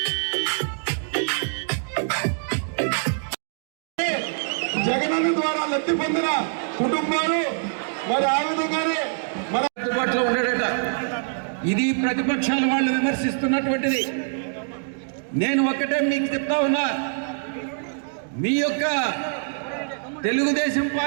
జగనన్న ద్వారా లబ్ధి పొందిన కుటుంబాలు మరి ఆ విధంగానే మన అందుబాటులో ఉన్నాడట. ఇది ప్రతిపక్షాల వాళ్ళు విమర్శిస్తున్నటువంటిది. నేను ఒక్కటే మీకు చెప్తా ఉన్నా, మీ యొక్క తెలుగుదేశం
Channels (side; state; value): left; silent; digital silence